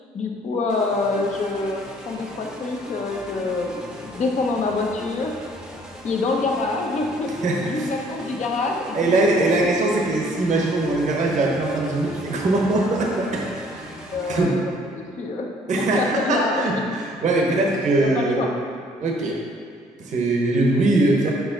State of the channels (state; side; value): normal; both; correlation 0.60